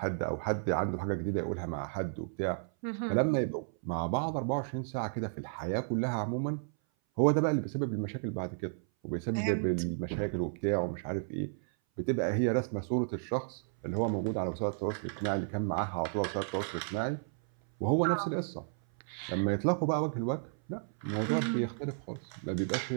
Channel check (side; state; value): left; silent; 56 dB below the other